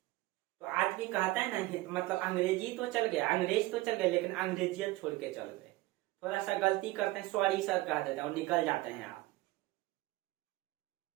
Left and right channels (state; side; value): quieter; left; 19.1 dB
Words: तो आज भी कहता है ना, मतलब अंग्रेजी तो चल गया, अंग्रेज तो चल गए, लेकिन अंग्रेजियत छोड़ के चल गए। थोड़ा सा गलती करते हैं, सॉरी सर कह देते हैं और निकल जाते हैं आप।